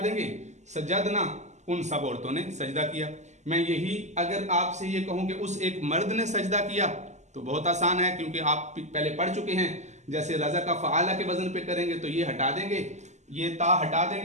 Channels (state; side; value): late; left; 0.33 ms